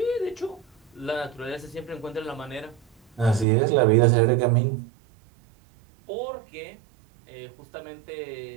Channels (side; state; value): left; drops out; at 3.5 s